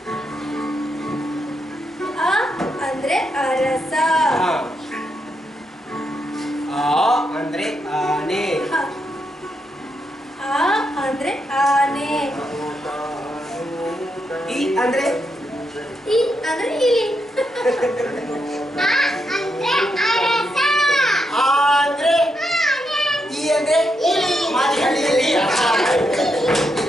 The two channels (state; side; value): normal; both; correlation 0.82